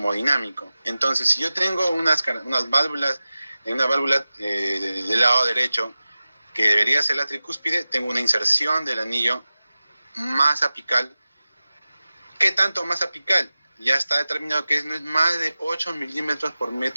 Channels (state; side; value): inverted; both; correlation -0.96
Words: Entonces, si yo tengo unas válvulas, una válvula del lado derecho, que debería ser la tricúspide, tengo una inserción del anillo más apical. ¿Qué tanto más apical? Ya está determinado que no es más de 8 milímetros por